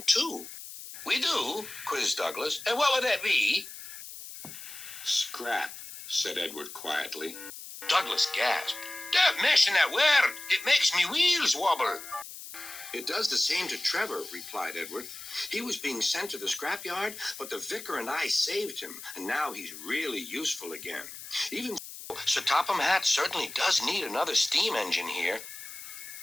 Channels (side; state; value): left; noise; hiss, 12 dB below the sound